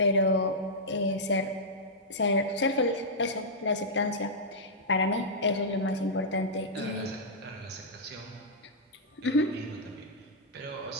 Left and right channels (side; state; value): both; normal; correlation -0.10